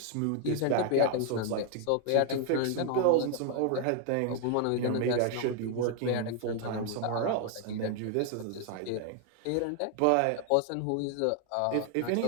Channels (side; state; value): both; different; correlation 0.00